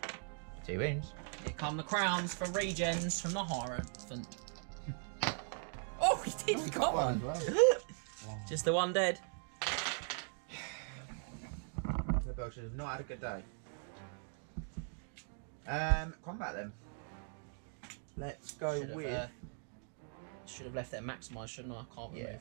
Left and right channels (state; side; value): silent; left; 51 dB below the other